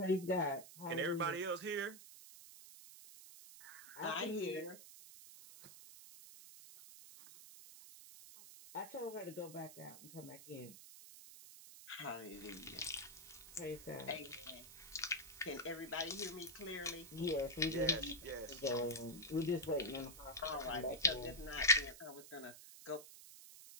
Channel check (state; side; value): noise; right; hiss, 15 dB below the sound